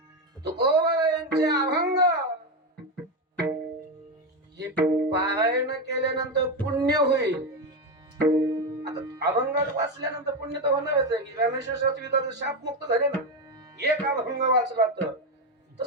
तुकोबारायांचे अभंग हे पारायण केल्यानंतर पुण्य होईल. आता अभंग वाचल्यानंतर पुण्य तर होणारच आहे की रामेश्वर शास्त्री शाप मुक्त झाले ना, एक अभंग वाचला तर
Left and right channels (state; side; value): normal; both; correlation 0.12